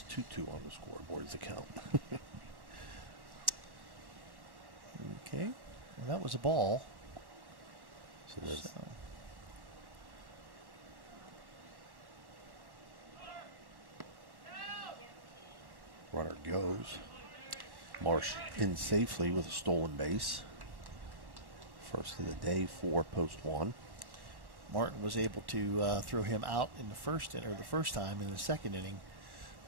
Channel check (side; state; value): left; late; 1.1 ms